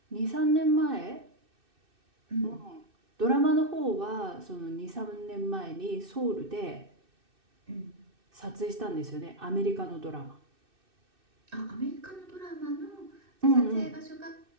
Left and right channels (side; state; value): left; late; 2.6 ms